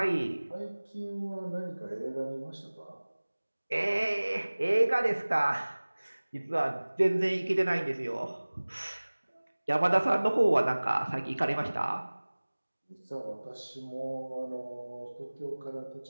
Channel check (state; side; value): inverted; both; correlation -1.00